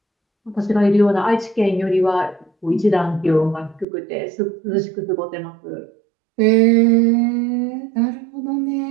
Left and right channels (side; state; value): left; drops out; at 3.9 s